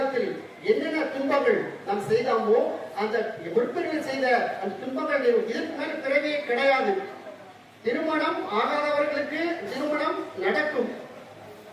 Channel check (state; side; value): identical; both; correlation 1.00